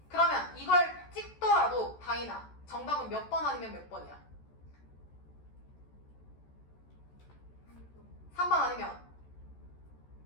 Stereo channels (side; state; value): right; late; 14 ms